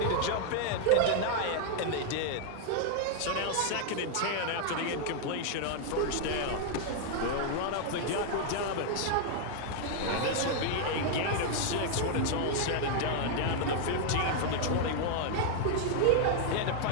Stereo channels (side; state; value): both; different; correlation 0.00